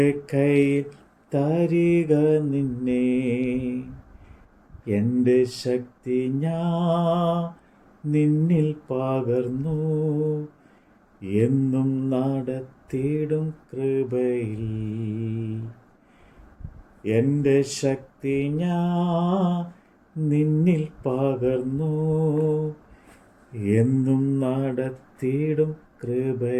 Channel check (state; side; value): identical; both; correlation 1.00